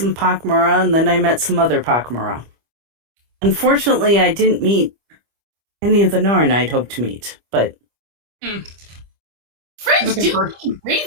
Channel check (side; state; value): left; late; 25 ms